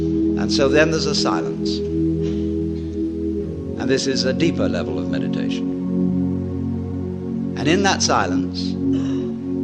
so then there's a silence. And this is a deeper level of meditation. And in that silence,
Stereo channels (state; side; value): identical; both; correlation 1.00